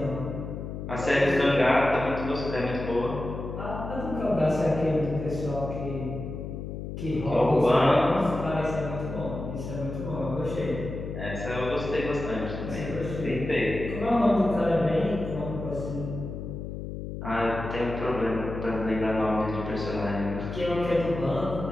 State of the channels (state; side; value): noise; left; hum, 7 dB below the sound